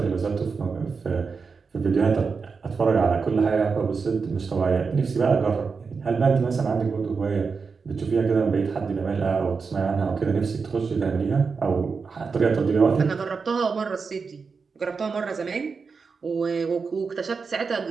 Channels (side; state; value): left; quieter; 5.1 dB